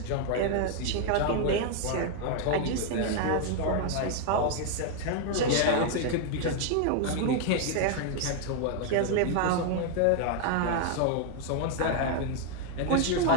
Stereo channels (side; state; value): both; different; correlation 0.00